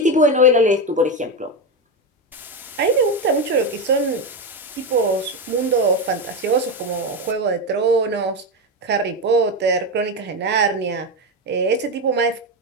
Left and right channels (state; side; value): normal; both; correlation 0.13